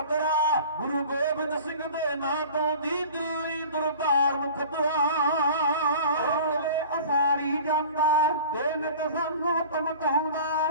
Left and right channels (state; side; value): inverted; both; correlation -0.42